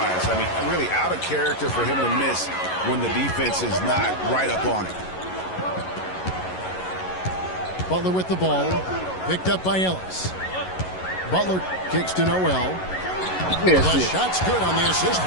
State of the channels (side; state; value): right; late; 11 ms